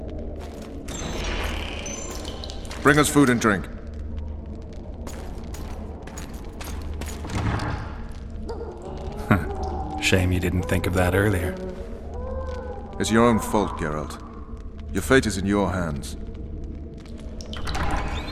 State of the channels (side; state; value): both; identical; correlation 1.00